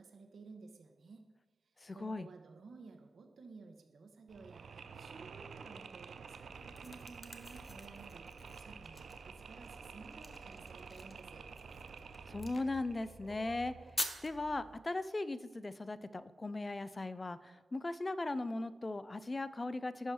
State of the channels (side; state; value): both; normal; correlation 0.95